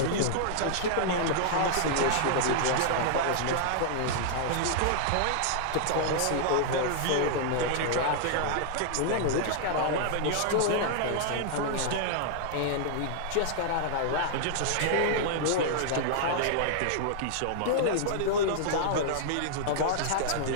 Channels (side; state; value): both; different; correlation -0.01